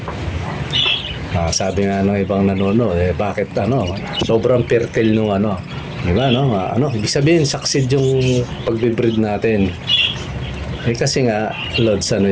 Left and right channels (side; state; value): both; identical; correlation 1.00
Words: sabi nga ng ibang nanonood, bakit sobrang fertile nung di ba ibig sabihin succeed yung pagbibreed natin. Kasi nga, Lods,